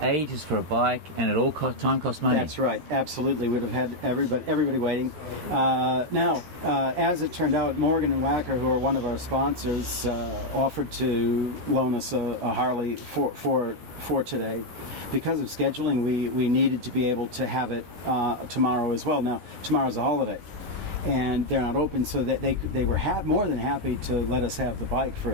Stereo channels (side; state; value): left; late; 13 ms